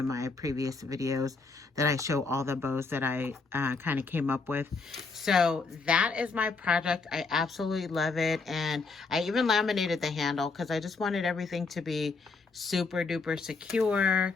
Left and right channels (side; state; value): right; quieter; 4.2 dB